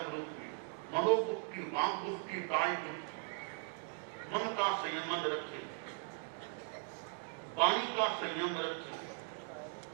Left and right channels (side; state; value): left; silent; 52 dB below the other